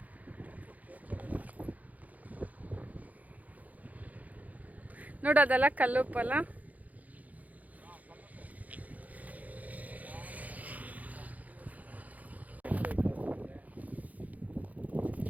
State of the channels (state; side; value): late; left; 0.077 ms